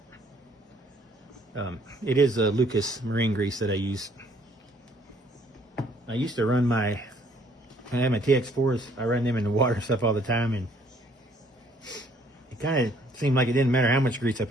It is a Lucas marine grease that I use. I used to run when I had my TX4s, I ran them in the water and stuff all the time, and it kind of seemed like it didn't matter how much grease I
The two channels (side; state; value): both; normal; correlation 0.63